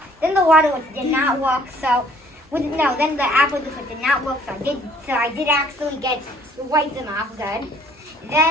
Then the water did not work, so then the apple juice did not work, so I did actually wipe them off good.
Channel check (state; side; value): normal; both; correlation 0.59